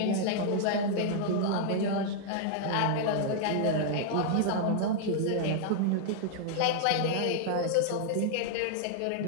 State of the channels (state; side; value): different; both; correlation -0.01